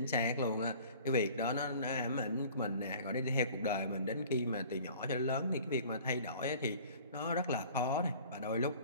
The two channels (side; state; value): both; inverted; correlation -0.47